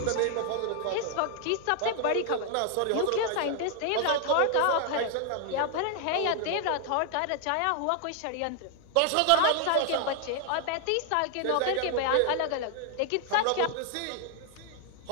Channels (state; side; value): different; both; correlation 0.00